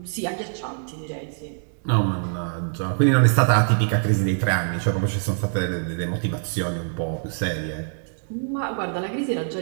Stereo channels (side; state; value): left; silent; digital silence